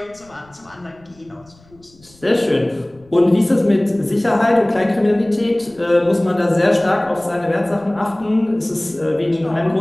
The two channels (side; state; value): left; noise; rumble, 29 dB below the sound